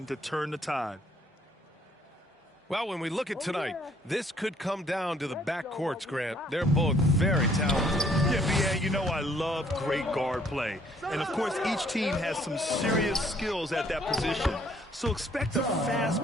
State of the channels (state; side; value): normal; both; correlation 0.63